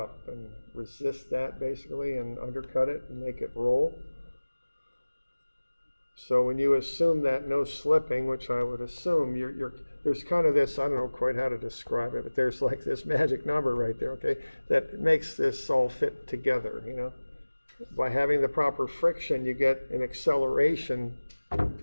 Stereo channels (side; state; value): both; inverted; correlation -1.00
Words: and resist that basically and undercut it and make it roll. So when you assume that no slipping, which I would assume, there's kind of this, I don't know quite how to describe it, but there's like this magic number right there, okay, that makes this all fit together, you know. By having the proper friction, you get an acceleration